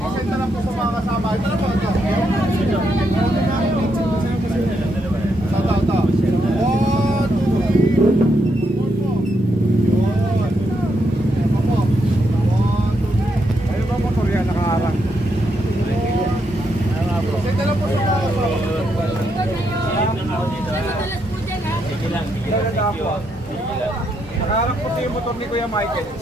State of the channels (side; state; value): both; normal; correlation 0.79